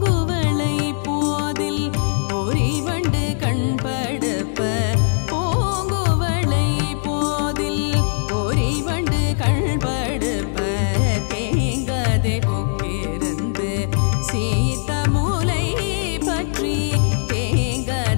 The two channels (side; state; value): right; silent; digital silence